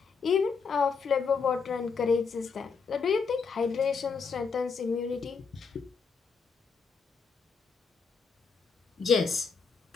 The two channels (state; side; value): quieter; right; 5.3 dB